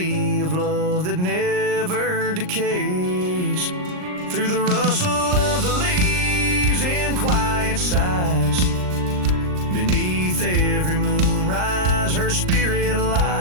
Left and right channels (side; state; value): left; late; 39 ms